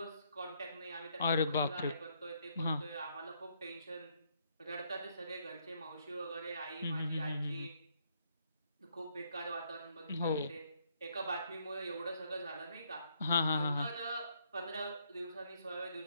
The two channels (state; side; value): inverted; both; correlation -0.71